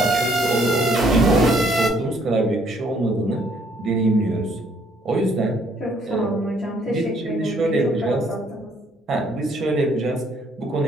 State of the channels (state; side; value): normal; both; correlation 0.65